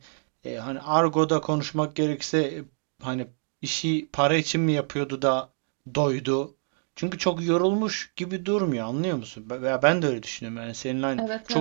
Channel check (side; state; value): left; silent; 60 dB below the other